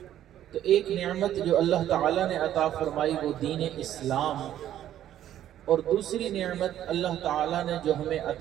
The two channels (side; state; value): left; quieter; 11.7 dB